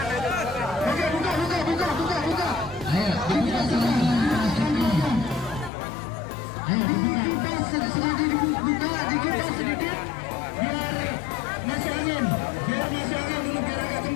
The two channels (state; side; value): drops out; right; at 5.7 s